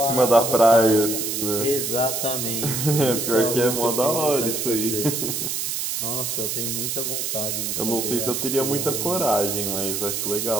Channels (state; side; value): noise; right; hiss, 2 dB below the sound